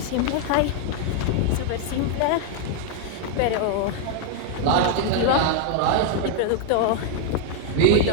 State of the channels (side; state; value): both; different; correlation 0.00